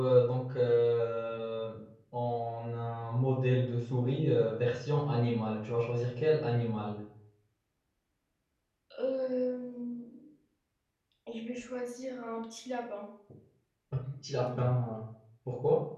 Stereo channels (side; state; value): both; identical; correlation 1.00